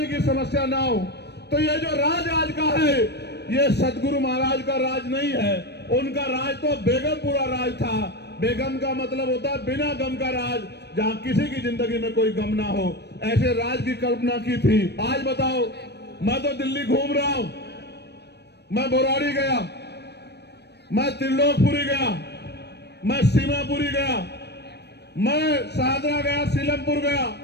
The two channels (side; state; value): right; late; 0.49 ms